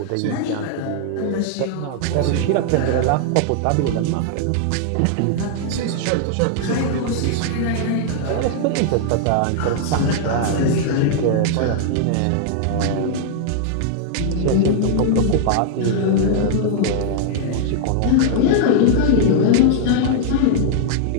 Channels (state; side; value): different; both; correlation -0.01